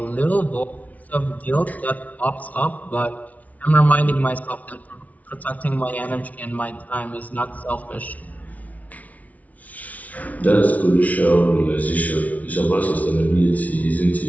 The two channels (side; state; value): right; late; 0.071 ms